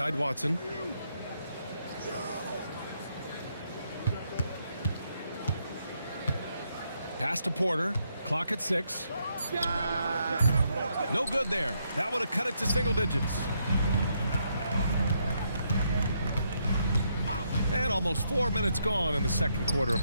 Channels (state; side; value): inverted; both; correlation -0.77